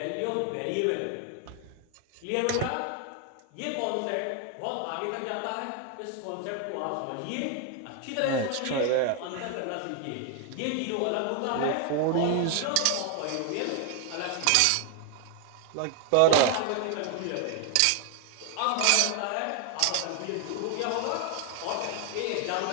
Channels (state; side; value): different; both; correlation 0.00